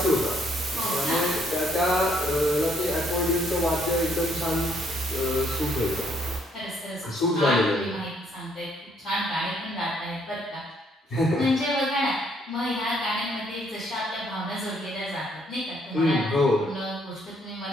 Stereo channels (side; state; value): both; normal; correlation 0.68